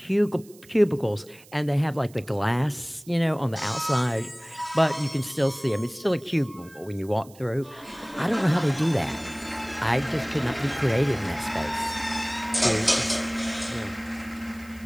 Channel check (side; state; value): right; noise; hiss, 24 dB below the sound